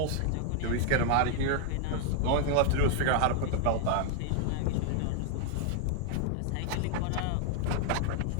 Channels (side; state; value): both; different; correlation 0.00